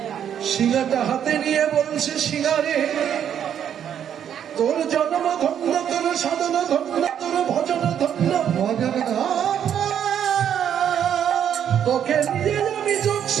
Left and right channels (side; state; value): left; quieter; 9.2 dB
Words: সিঙ্গাটা হাতে নিয়ে বলছে, সিঙ্গারে তোর জন্ম ধন্য, তোর সাধন ধন্য, তোর ভজন ধন্য, ভজন তোকে নিয়ে আমি যোগ